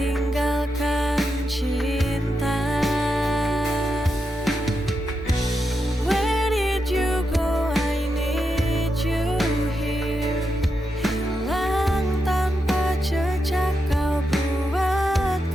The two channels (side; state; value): both; normal; correlation 0.85